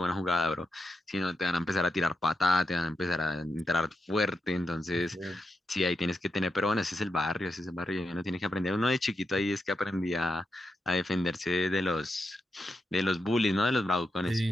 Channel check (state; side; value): normal; both; correlation 0.86